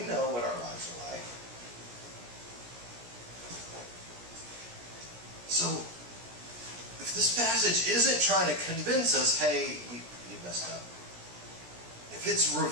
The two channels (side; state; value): left; late; 17 ms